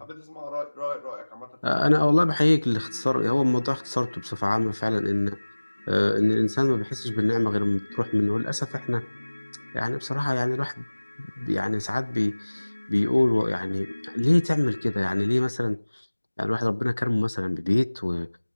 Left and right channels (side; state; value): both; inverted; correlation -1.00